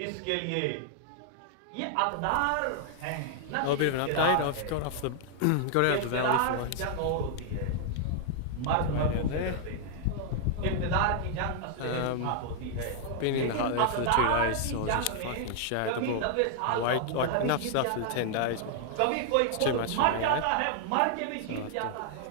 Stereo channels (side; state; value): both; different; correlation 0.00